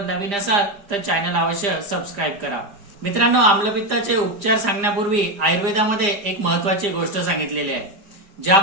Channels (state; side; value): late; left; 5.0 ms